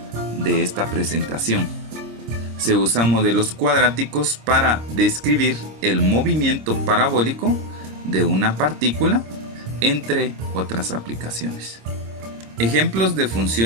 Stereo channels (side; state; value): left; late; 26 ms